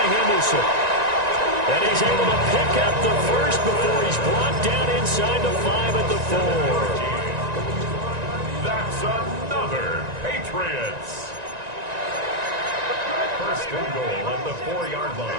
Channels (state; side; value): late; left; 1.9 ms